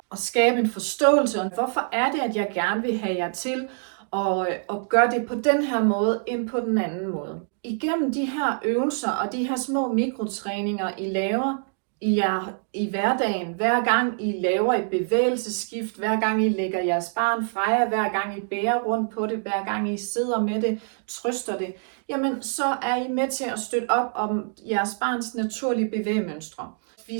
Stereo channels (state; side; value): silent; left; digital silence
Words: at skabe en forståelse. Hvorfor er det, at jeg gerne vil have jer til at gøre det på den her måde, end på den anden måde? Igennem de her øvelser og de her små mikrotræninger, I laver i hverdagen, hver gang I laver et bevægelsesskift, hver gang I lægger jeres barn fra jer, hver gang I bærer rundt på det, hver gang I sidder med det, trøster det, jamen så er I med til at støtte op om jeres barns naturlige bevægemønstre.